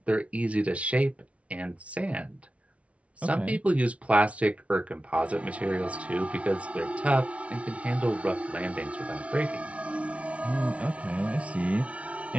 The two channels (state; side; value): late; left; 0.064 ms